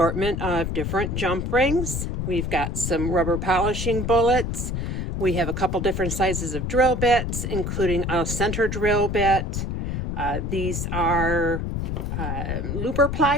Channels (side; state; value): left; noise; rumble, 2 dB below the sound